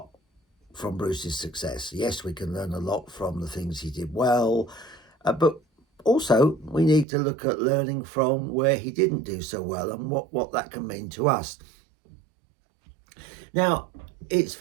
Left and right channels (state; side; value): drops out; left; at 7.1 s